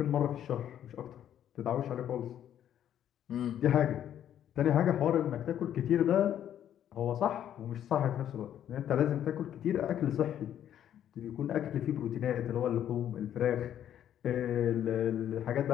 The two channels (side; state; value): right; quieter; 10.5 dB